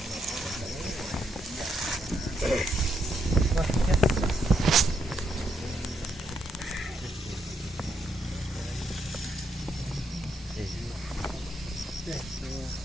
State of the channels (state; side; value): normal; both; correlation 0.78